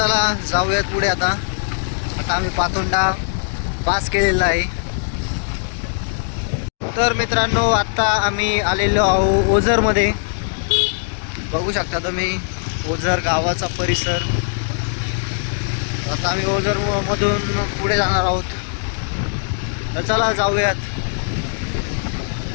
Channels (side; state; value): right; silent; digital silence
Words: जाऊयात पुढे. आता आम्ही पातोंडा पास केलेला आहे. तर मित्रांनो आत्ता आम्ही आलेलो आहोत ओझरमध्ये. बघू शकता तुम्ही ओझर गावाचा परिसर. आता आम्ही ओझर मधून पुढे जाणार आहोत. तर चला जाऊयात.